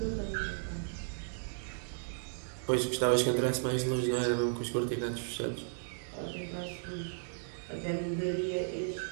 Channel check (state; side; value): silent; left; 55 dB below the other